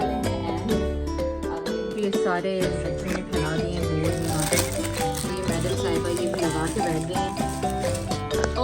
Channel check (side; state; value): both; identical; correlation 1.00